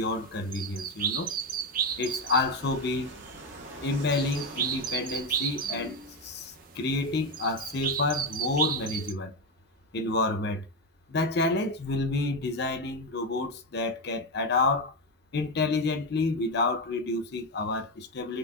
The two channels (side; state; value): both; normal; correlation 0.11